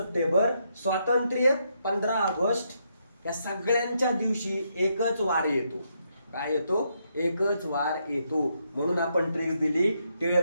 स्वातंत्र्य 15 ऑगस्ट. या सगळ्यांच्या दिवशी एकच वार येतो. काय येतो? एकच वार येतो. म्हणून आपण ट्रिक दिली.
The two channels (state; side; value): inverted; both; correlation -0.78